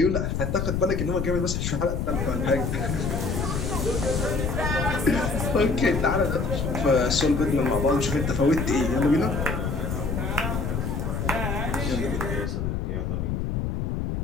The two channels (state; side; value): noise; left; rumble, 1 dB below the sound